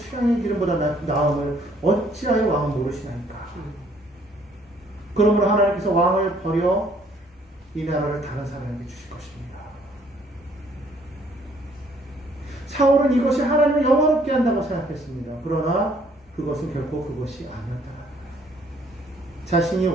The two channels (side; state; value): both; normal; correlation 0.63